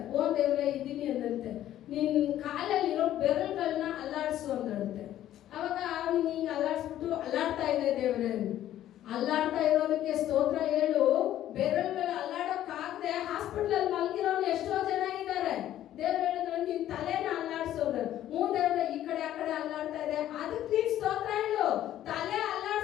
ಓ ದೇವ್ರೆ ಇದ್ದೀನಿ ಅಂದಂತೆ. ನಿನ್ ಕಾಲಲ್ಲಿರೋ ಬೆರಳುಗಳನ್ನ ಅಲ್ಲಾಡ್ಸು ಅಂದಂತೆ. ಅವಾಗ ಅವನಿಗೆ ಹಿಂಗೆ ಅಲ್ಲಾಡ್ಸ್ಬಿಟ್ಟು, ಅಲ್ಲಾಡ್ತಾ ಇದೆ ದೇವ್ರೆ, ಅಲ್ಲಾಡ್ತಾ ಇರೋದಕ್ಕೆ ಸ್ತೋತ್ರ ಹೇಳು. ಬೆರಳುಗಳು ಅಲ್ಲಾಡೋಕ್ಕಾಗದೆ ಹಾಸ್ಪಿಟಲ್ ಮಲಗಿರೋನು ಎಷ್ಟೋ ಜನ ಇದ್ದಾರೆ. ದೇವ್ರು ಹೇಳಿದ್ರು, ನಿನ್ ತಲೆನ ಅಲ್ಲಾಡ್ಸೋದು. ದೇವ್ರೆ ಈ ಕಡೆ ಆ ಕಡೆ ಅಲ್ಲಾಡ್ತಾ ಇದೆ, ಅದಕ್ಕೆ ನೀನ್ ಸ್ತೋತ್ರ ಹೇಳು. ತಲೆ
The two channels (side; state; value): right; quieter; 12.4 dB